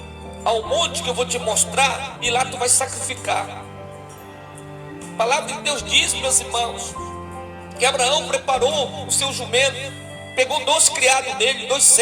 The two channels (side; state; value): both; identical; correlation 1.00